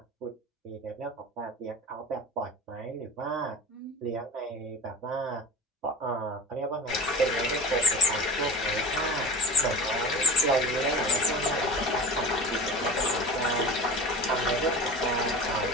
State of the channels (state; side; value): normal; both; correlation 0.33